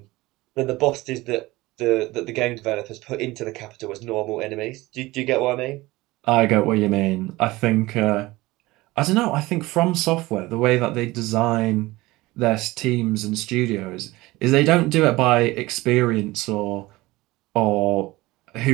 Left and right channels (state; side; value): quieter; left; 19.9 dB